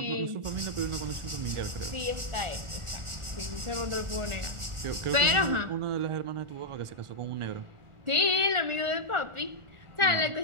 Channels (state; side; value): late; left; 1.4 ms